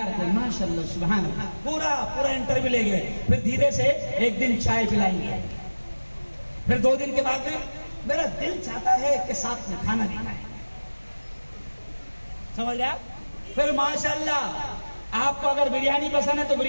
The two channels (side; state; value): both; inverted; correlation -1.00